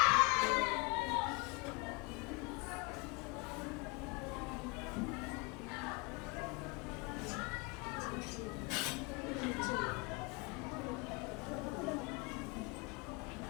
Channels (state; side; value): quieter; right; 28.2 dB